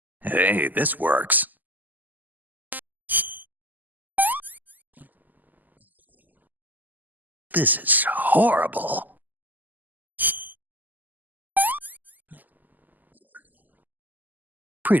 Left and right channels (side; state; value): left; late; 0.084 ms